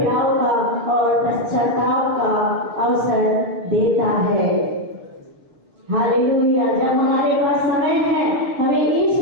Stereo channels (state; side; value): late; left; 7.2 ms